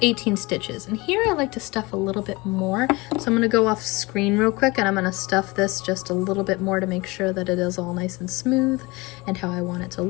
18 stitches, and here I like to stuff a little bit more. So I'm going to go off screen real quick and I'm going to stuff this just a little bit more to make sure that it is all nice and smooth and how I want it to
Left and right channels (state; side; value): quieter; right; 23.7 dB